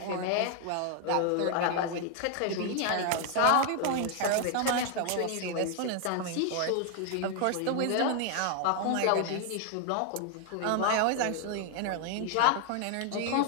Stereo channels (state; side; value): different; both; correlation 0.00